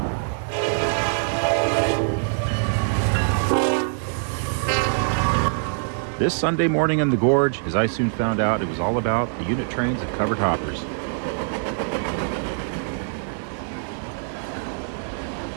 This Sunday morning in the Gorge, as I soon found out, it was all about the unit trains of covered hoppers.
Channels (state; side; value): silent; left; 63 dB below the other